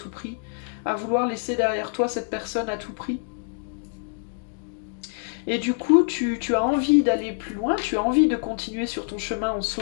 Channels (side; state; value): right; silent; digital silence